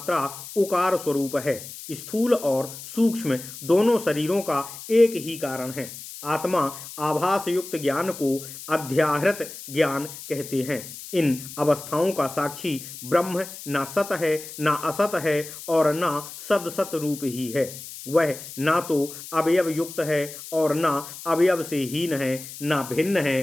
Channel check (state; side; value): noise; left; hiss, 13 dB below the sound